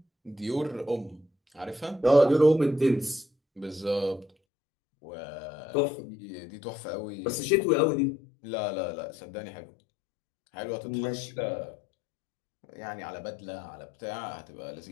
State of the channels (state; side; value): drops out; right; at 4.3 s